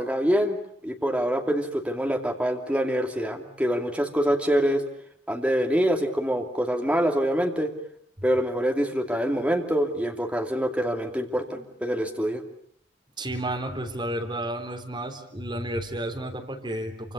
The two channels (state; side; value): normal; both; correlation 0.82